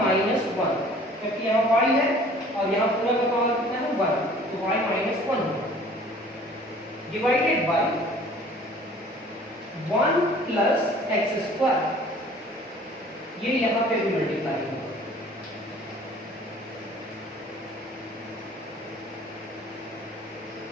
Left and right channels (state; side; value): normal; both; correlation 0.51